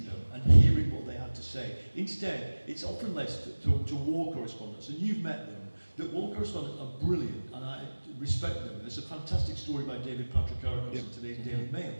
them and hearing what they had to say. Instead, it's often left to war correspondents, and you've met them, that war correspondents are brilliant, and I respect them. There's a fantastic story by David Patrikarakos in today's Daily Mail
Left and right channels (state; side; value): inverted; both; correlation -1.00